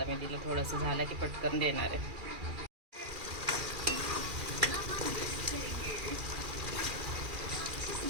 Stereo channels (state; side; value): late; left; 2.4 ms